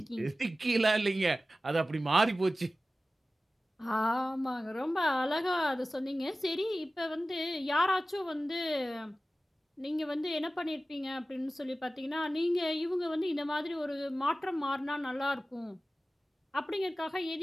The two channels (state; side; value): normal; both; correlation 0.95